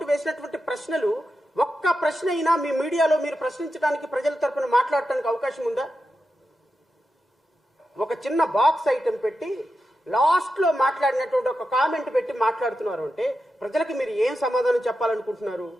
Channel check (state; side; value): normal; both; correlation 0.89